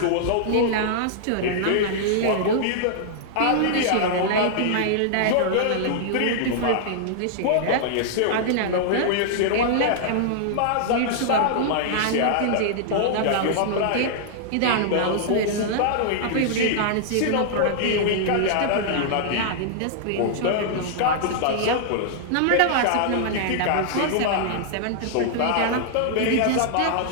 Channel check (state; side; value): different; both; correlation -0.01